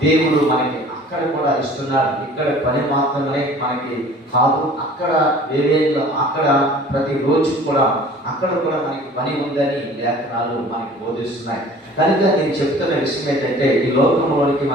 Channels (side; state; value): both; normal; correlation 0.47